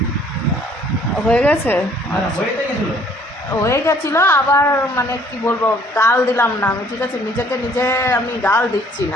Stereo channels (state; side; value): normal; both; correlation 0.59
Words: হয়ে গেছে, হয়ে গেছিলো আবার, মানে কি বলবো, গাল দিলাম না আমি, ঠিক আছে। নিজেকে নিজে আমি গাল দিচ্ছি